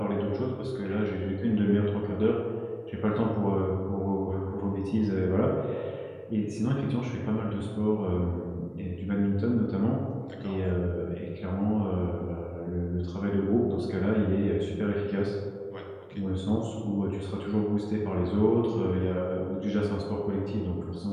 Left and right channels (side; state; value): both; identical; correlation 1.00